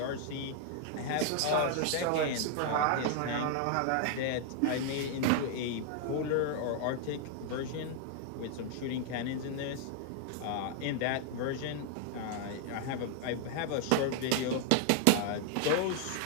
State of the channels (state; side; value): different; both; correlation 0.00